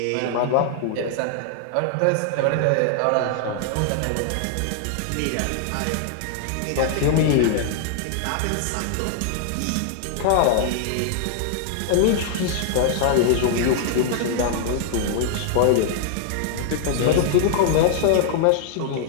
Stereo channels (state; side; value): different; both; correlation 0.00